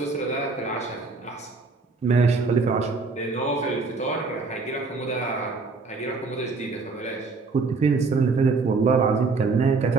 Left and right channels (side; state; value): left; quieter; 4.1 dB